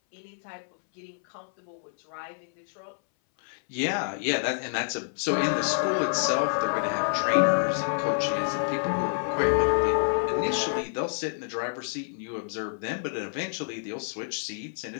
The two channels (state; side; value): silent; right; 59 dB below the other